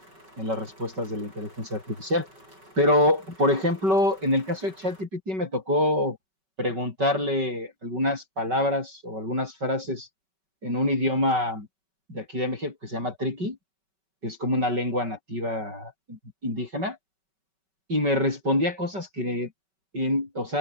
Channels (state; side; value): late; left; 5.3 ms